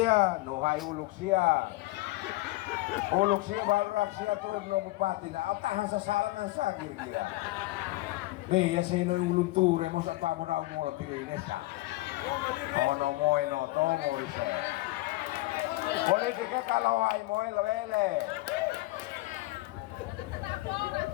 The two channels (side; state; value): right; quieter; 19.9 dB